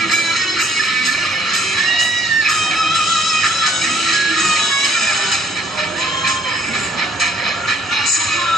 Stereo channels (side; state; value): both; normal; correlation 0.62